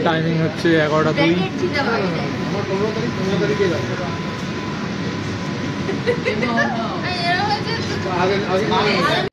টাইমিং হচ্ছে 11টা 2।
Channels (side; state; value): both; identical; correlation 1.00